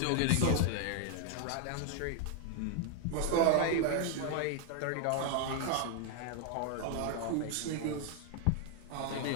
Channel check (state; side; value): different; both; correlation 0.00